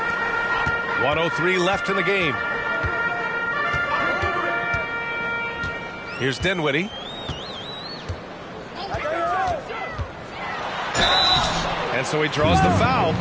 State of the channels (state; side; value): identical; both; correlation 1.00